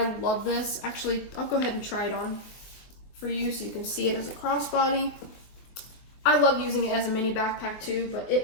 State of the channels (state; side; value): late; right; 23 ms